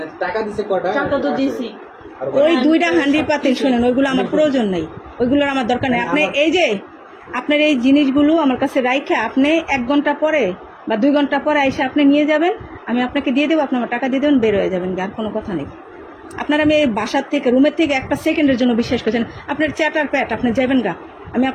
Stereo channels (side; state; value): both; identical; correlation 1.00